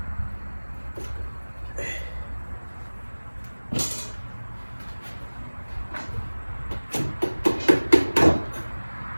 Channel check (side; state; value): both; inverted; correlation -1.00